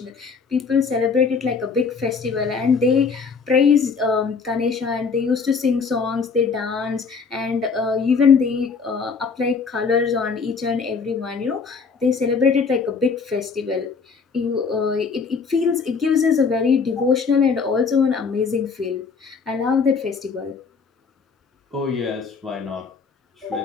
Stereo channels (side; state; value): right; quieter; 5.3 dB